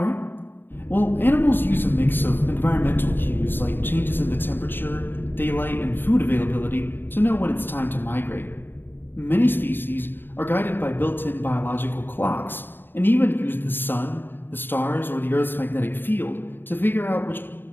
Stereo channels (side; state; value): right; late; 0.096 ms